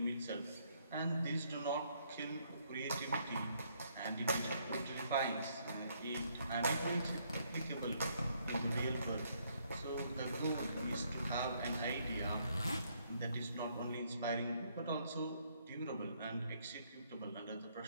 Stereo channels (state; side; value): inverted; both; correlation -0.70